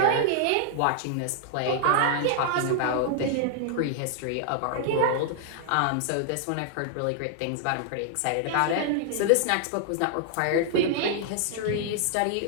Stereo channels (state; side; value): different; both; correlation -0.01